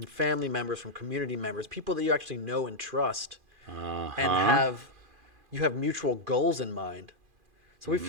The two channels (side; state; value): left; late; 2.4 ms